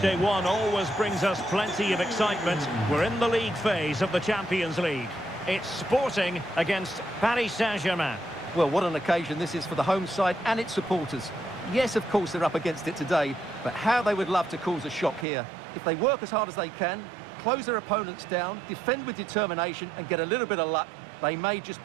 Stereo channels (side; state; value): left; drops out; at 15.2 s